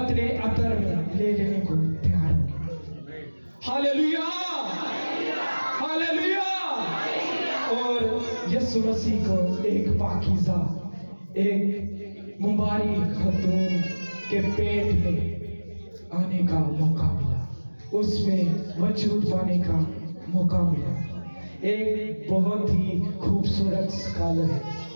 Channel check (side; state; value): both; inverted; correlation -1.00